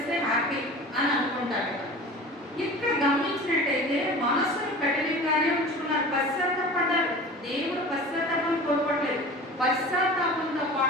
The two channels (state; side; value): normal; both; correlation 0.38